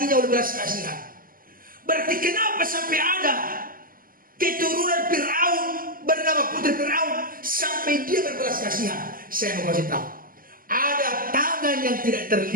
oleh belas kasihan. Berarti kenapa sampai ada keturunan Firaun bernama Putri Firaun sampai dia berbelas kasihan? Saya mau kasih tahu, ada tangan yang tidak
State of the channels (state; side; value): late; left; 0.41 ms